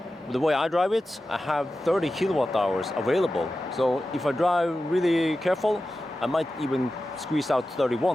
the way I drive it, I have 30 kilowatt hours available. So if I drive really careful, I might even squeeze out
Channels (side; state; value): both; normal; correlation 0.93